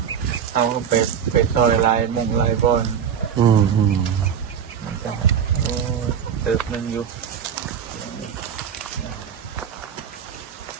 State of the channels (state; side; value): quieter; left; 8.0 dB